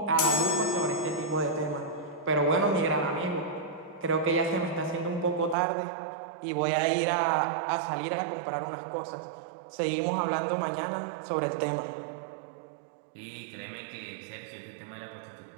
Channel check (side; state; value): left; drops out; at 5.6 s